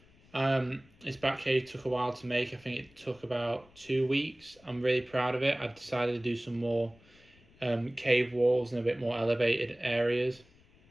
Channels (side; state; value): left; noise; rumble, 28 dB below the sound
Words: This Batcave took a while to make. I think it took about 2 weeks. I'm really proud of it. I decided to do some more cave walls and a bit more elevated areas.